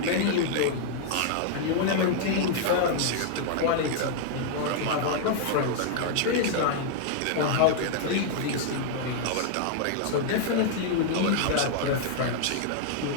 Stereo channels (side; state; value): both; different; correlation -0.01